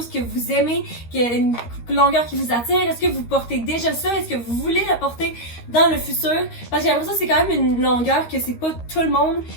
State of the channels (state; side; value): late; right; 13 ms